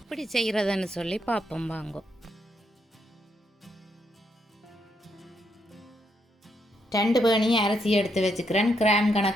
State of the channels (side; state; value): both; normal; correlation 0.78